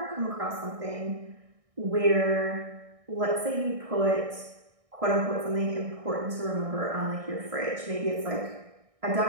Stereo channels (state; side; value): late; left; 1.6 ms